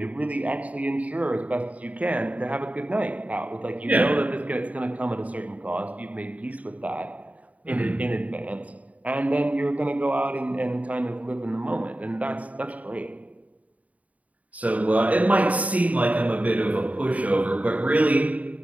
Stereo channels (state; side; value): late; left; 0.070 ms